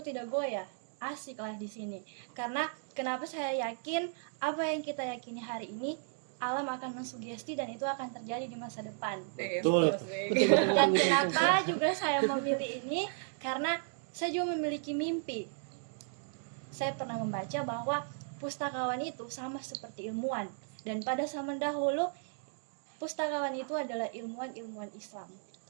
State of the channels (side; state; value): left; silent; digital silence